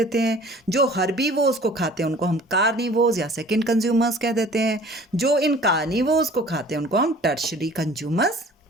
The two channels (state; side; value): normal; both; correlation 0.49